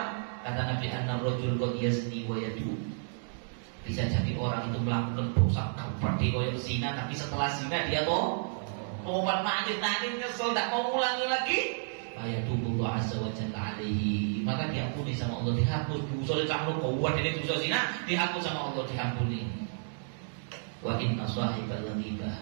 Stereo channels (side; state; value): left; silent; digital silence